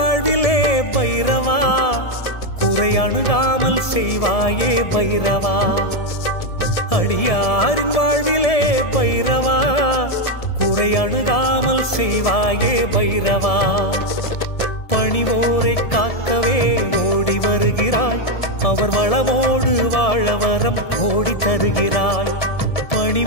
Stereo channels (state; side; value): late; right; 1.7 ms